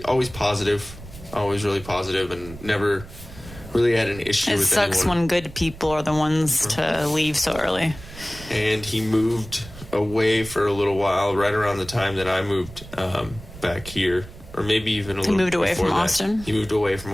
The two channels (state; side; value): noise; right; rumble, 16 dB below the sound